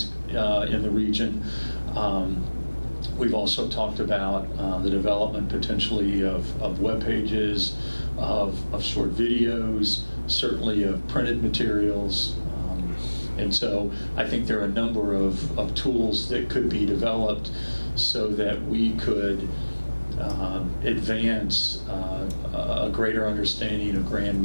region. We've also talked about the development potentially of web pages, of short videos, certainly of printed materials. And so I think there are a number of tools that could be developed so that we could advance a greater understanding of Grand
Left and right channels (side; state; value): both; inverted; correlation -1.00